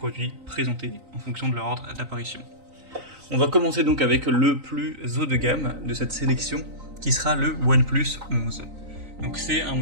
présentés en fonction de leur ordre d'apparition. On va commencer donc avec le plus haut de gamme de cette sélection qui sera le OnePlus 11. Donc c'est un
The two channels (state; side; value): late; left; 3.9 ms